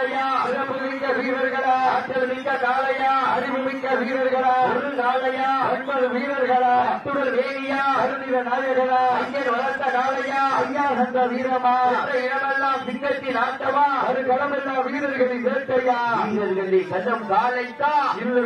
சிறப்பு மிக்க வீரர்களா ஆற்றல் மிக்க காலையா அறிவு மிக்க வீரர்களா ஒரு காலையா 9 வீரர்களா அத்துடன் வேணியா கருணீர நாயகனா ஐயன் வளர்த்த காலையா ஐயா சந்த வீரமா இடமெல்லாம் சிங்கத்தின் ஆட்டமா அது களமெல்லாம் வீரர்களின் வேட்டையா வீரர்களை கண்ணம் காலைக்கா இல்லை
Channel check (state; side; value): identical; both; correlation 1.00